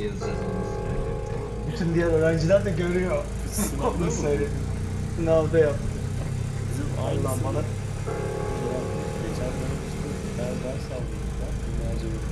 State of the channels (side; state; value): both; identical; correlation 1.00